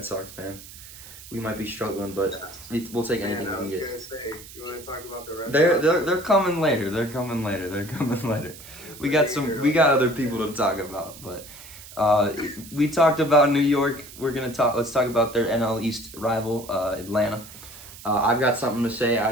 Sox fan. We might be struggling, but we'll take anything we can get. I was going to say, you want to talk about the Red Sox? They're coming later. They're coming later. We got other people to talk about, but we talked about New York. Let's talk about their NL East rival, Atlanta. I've got something to say. I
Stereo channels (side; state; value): right; noise; hiss, 17 dB below the sound